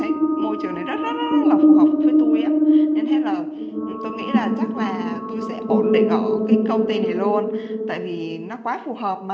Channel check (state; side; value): identical; both; correlation 1.00